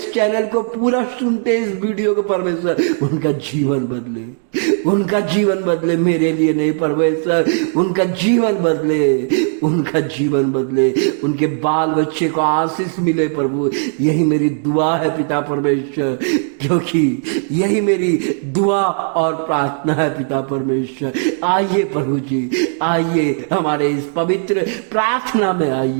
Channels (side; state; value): left; silent; 65 dB below the other